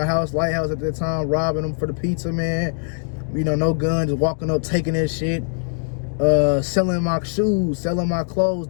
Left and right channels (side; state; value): right; silent; 64 dB below the other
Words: house, Lighthouse at that time, robbing them for the pizza, man. You know, no guns, walking up, taking that shit. Selling my shoes, selling my clothes